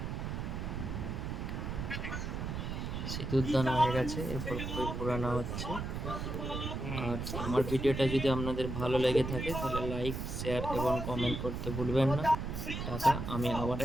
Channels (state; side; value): noise; right; rumble, 4 dB below the sound